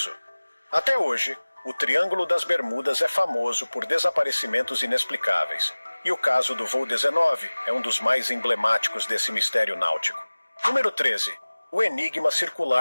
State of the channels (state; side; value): inverted; both; correlation -1.00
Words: Até hoje, o Triângulo das Bermudas é famoso por desaparecimentos inexplicáveis, e o caso do voo 19 é um dos mais emblemáticos desse mistério náutico. Número 13. O enigma